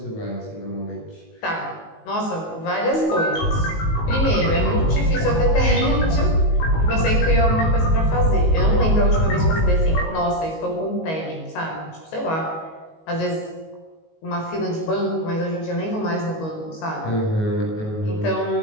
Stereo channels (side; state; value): right; late; 19 ms